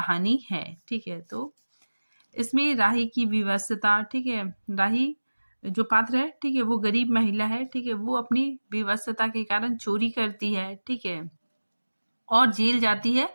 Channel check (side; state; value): both; inverted; correlation -1.00